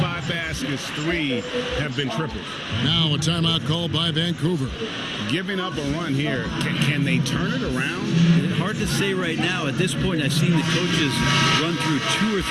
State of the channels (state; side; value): identical; both; correlation 1.00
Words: baskets, 3 have been triples. Now a timeout called by Vancouver. Giving up a run here. Can they turn it around? Hard to say right now. At this point, I've seen the coaches run through 2 or